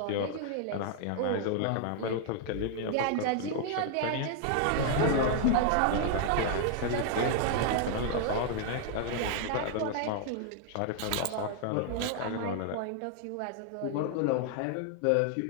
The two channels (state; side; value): different; both; correlation 0.00